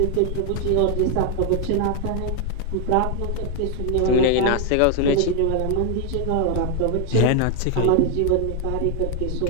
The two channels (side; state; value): both; different; correlation 0.00